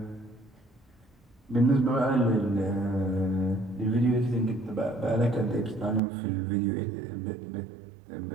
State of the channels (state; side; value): drops out; left; at 6.0 s